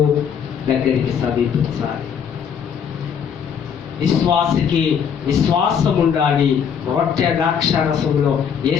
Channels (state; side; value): quieter; right; 7.5 dB